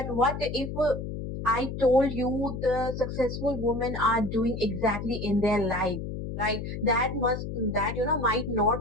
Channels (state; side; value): noise; left; hum, 6 dB below the sound